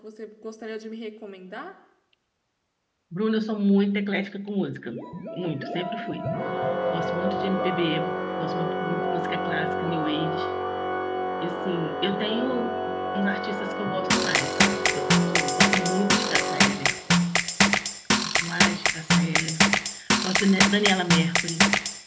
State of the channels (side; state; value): both; identical; correlation 1.00